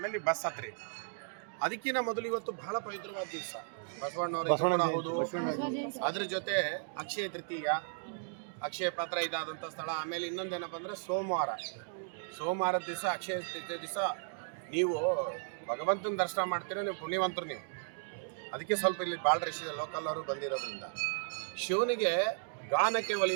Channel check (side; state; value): left; silent; digital silence